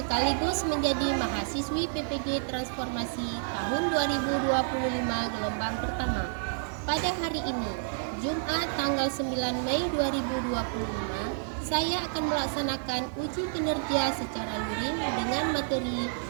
menjadi mahasiswi PPG Transformasi tahun 2025 gelombang pertama. Pada hari ini, Jumat tanggal 9 Mei 2025, saya akan melaksanakan uji kinerja secara luring dengan materi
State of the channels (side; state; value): left; silent; digital silence